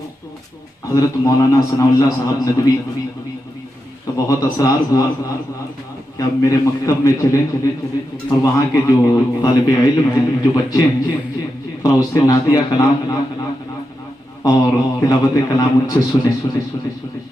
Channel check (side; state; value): both; normal; correlation 0.88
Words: حضرت مولانا ثناء اللہ صاحب ندوی کا بہت اصرار ہوا کہ آپ میرے مکتب میں چلیں اور وہاں کے جو طالب علم ہیں، جو بچے ہیں، اور اس سے نعتیہ کلام اور تلاوت کلام ان سے سنیں۔